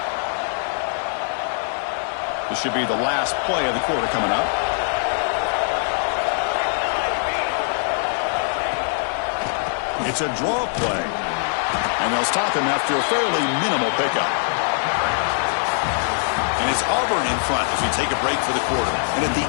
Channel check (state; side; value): silent; right; digital silence